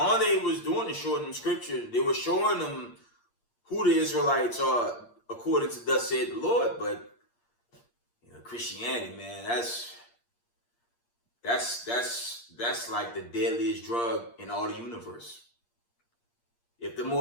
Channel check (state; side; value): late; right; 8.6 ms